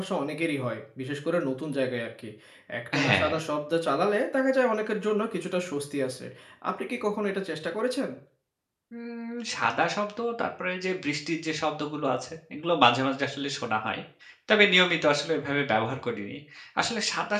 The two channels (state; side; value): identical; both; correlation 1.00